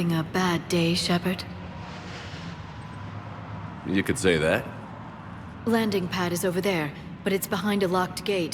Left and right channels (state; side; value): identical; both; correlation 1.00